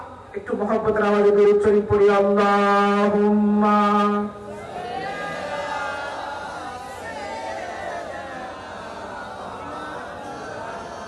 একটু মহব্বতের আওয়াজে দরুদ শরীফ পড়ি, আল্লাহুম্মা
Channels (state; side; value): identical; both; correlation 1.00